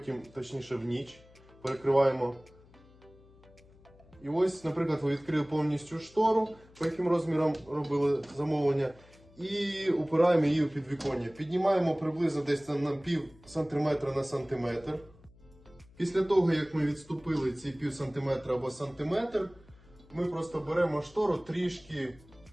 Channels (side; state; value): left; noise; hum, 26 dB below the sound